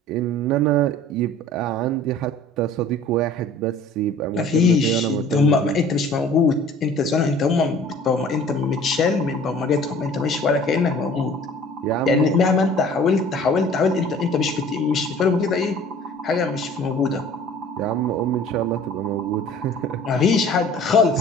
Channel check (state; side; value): normal; both; correlation 0.48